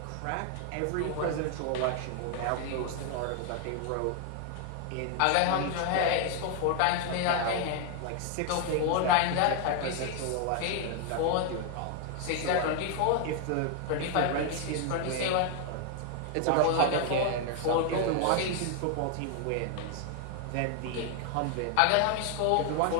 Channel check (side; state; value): both; different; correlation 0.00